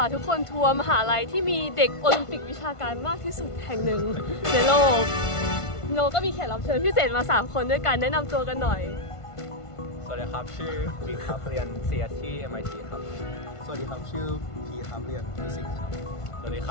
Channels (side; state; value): right; late; 1.5 ms